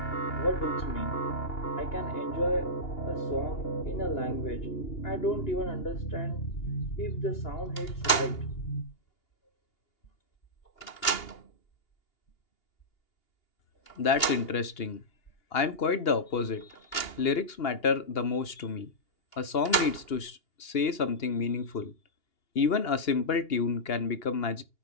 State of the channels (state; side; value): late; right; 2.8 ms